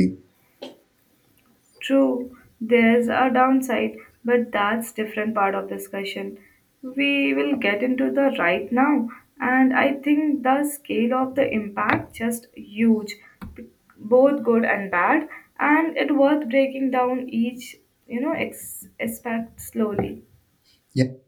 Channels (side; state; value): both; identical; correlation 1.00